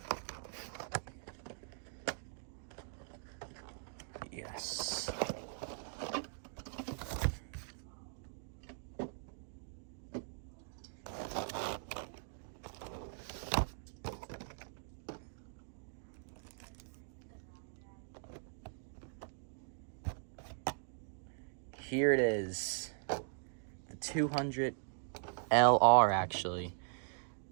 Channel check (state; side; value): silent; left; digital silence